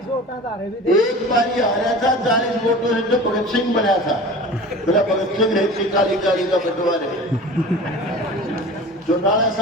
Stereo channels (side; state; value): both; normal; correlation 0.36